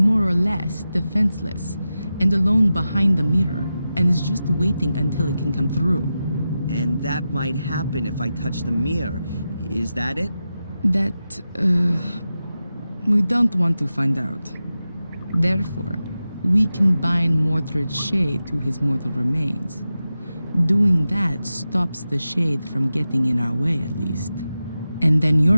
or less defenseless and alone behind the mirror and is just waiting until it can come through. And that might happen if I touch the mirror. Is that it? That, we don't want to find out. Therefore, we can bind Mordred's shade to his mortal remains. Doing that stops the shade from getting in our way, at least. And then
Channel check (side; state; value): both; inverted; correlation -0.92